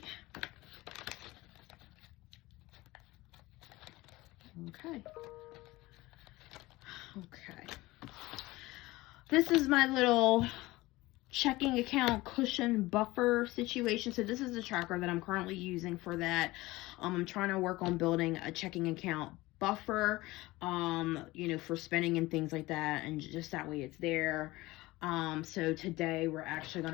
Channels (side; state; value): right; quieter; 19.6 dB